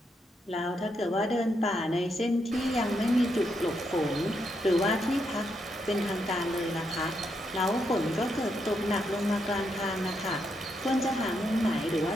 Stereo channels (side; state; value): both; normal; correlation 0.80